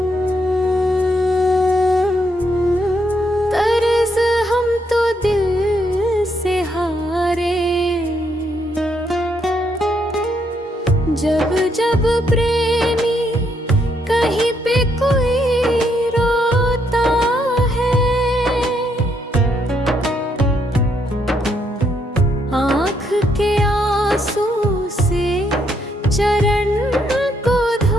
तरस हम तो दिल से हारे, जब जब प्रेमी कहीं पे कोई रोता है, आँख के आंसू से चरण को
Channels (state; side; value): normal; both; correlation 0.75